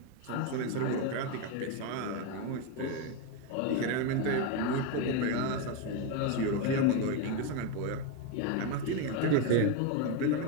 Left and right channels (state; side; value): different; both; correlation 0.03